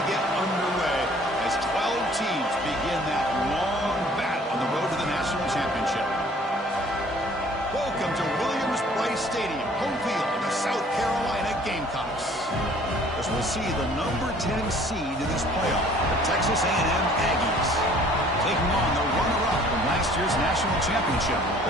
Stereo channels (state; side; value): normal; both; correlation 0.54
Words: get underway as 12 teams begin that long battle on the road to the national championship. Welcome to Williams-Brice Stadium, home field of the South Carolina Gamecocks. As we'll see the number 10 seed in this playoff, the Texas A&M Aggies, taking on the runner-up from last year's national championship,